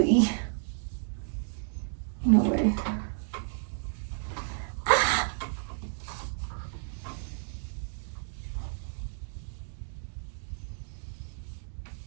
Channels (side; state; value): left; silent; digital silence